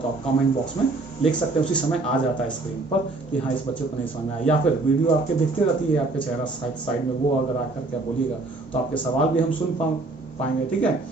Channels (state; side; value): quieter; left; 3.2 dB